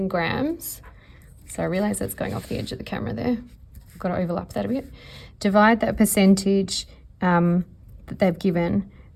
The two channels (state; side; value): identical; both; correlation 1.00